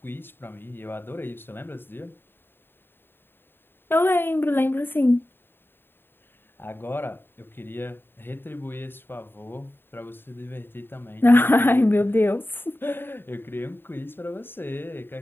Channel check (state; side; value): late; right; 0.10 ms